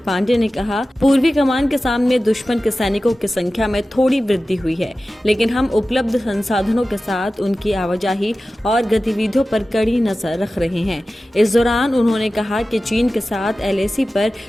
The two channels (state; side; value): normal; both; correlation 0.95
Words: पांडे ने कहा, पूर्वी कमान के सामने दुश्मन के सैनिकों की संख्या में थोड़ी वृद्धि हुई है, लेकिन हम उपलब्ध संसाधनों के साथ उनकी आवाजाही और गतिविधियों पर कड़ी नजर रख रहे हैं। इस दौरान उन्होंने कहा कि चीन के साथ LAC पर